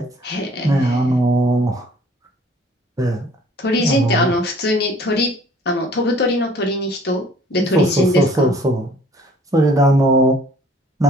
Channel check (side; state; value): both; normal; correlation 0.55